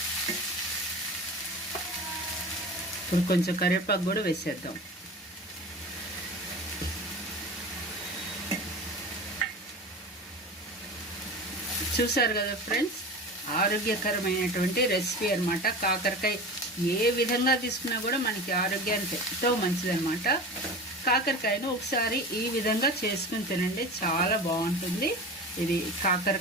ఇప్పుడు కొంచెం కరివేపాకు కూడా వేసేద్దాం. చూసారు కదా ఫ్రెండ్స్, ఆరోగ్యకరమైనటువంటి రెసిపీ అన్నమాట. కాకరకాయ ఏ విధంగా తీసుకున్నా కూడా మనకి ఆరోగ్యానికి ఎంతో మంచిదన్నమాట. కాకరకాయను ఒకసారి ఈ విధంగా చేసుకుని తినండి, చాలా బాగుంటుంది. ఇది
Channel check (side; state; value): both; normal; correlation 0.32